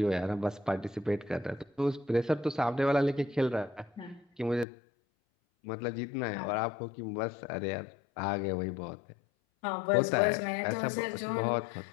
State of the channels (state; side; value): drops out; right; at 4.7 s